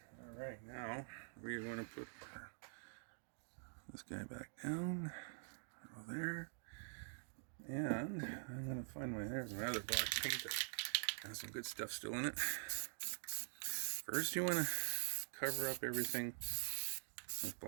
All right, now we're going to put this guy back down. Over there. And I'm going to find there's my other black paint that has some good stuff still in it. First, you want to cover up everything with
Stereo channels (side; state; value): left; silent; digital silence